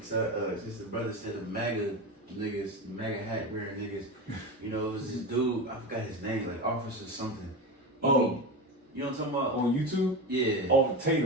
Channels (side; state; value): both; normal; correlation 0.22